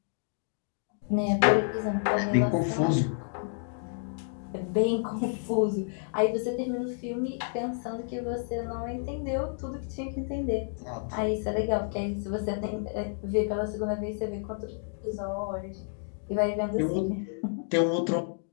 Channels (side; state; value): right; silent; digital silence